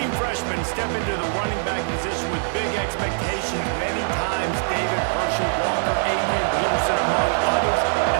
freshmen step into the running back position with big expectations many times. David Herschel, Walker, Adrian Peterson, among others,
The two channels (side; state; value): left; silent; digital silence